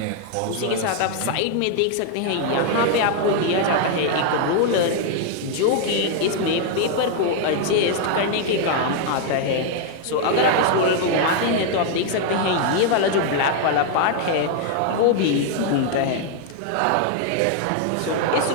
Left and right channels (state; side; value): different; both; correlation 0.00